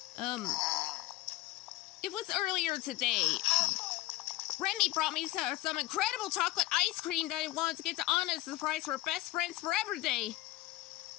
It was earlier today. Remy brought me some incredible chocolate ice cream that I wanted to get to Anna as a surprise for Best Friends Forever Day,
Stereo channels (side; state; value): right; quieter; 17.5 dB